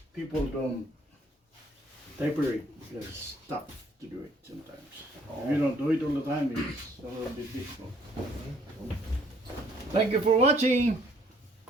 people don't taper it because it's tough to do it sometimes. If you don't do it all the time, it's a little bit difficult. Thank you for watching.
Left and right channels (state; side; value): normal; both; correlation 0.62